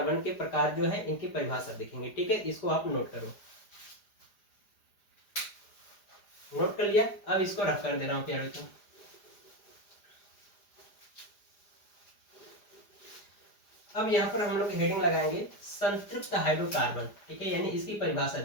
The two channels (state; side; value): late; right; 4.9 ms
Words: के प्रकार जो है इनकी परिभाषा देखेंगे, ठीक है। इसको आप नोट करो। नोट कर लिया? अब इसको रफ कर दे रहा हूँ प्यारे बच्चों। अब यहाँ पर हम लोग हेडिंग लगाएंगे संतृप्त हाइड्रोकार्बन, ठीक है, यानी इसकी परिभाषा